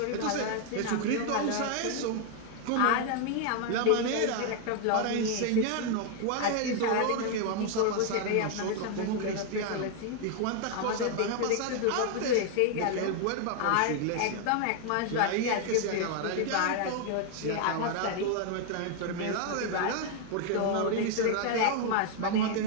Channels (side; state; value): both; different; correlation 0.00